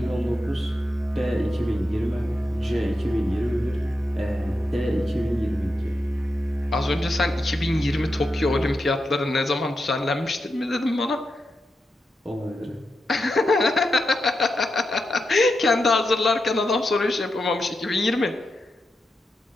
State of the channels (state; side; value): normal; both; correlation 0.87